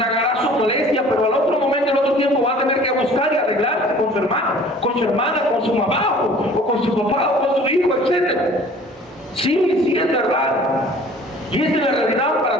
su molestia, pero al otro momento, al otro tiempo va a tener que buscar y arreglarse con su hermano, con su hermana, con su mamá, o con su papá, o con su hijo, etc. Sí, es verdad. Y esta es la realidad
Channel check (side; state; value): both; normal; correlation 0.49